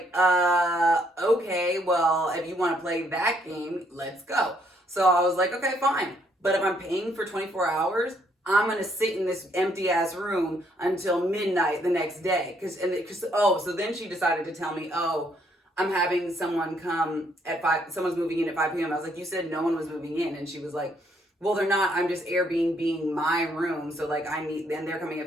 okay, well, if you want to play that game, let's go. So I was like, okay, fine. But if I'm paying for 24 hours, I'm going to sit in this empty ass room until midnight the next day. So then she decided to tell me, I'm having someone come at 5, someone's moving in at 5 p.m. I was like, you said no one was moving in. And she was like, well, they're not, I'm just Airbnb my room. So like then they're coming at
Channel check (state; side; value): normal; both; correlation 0.70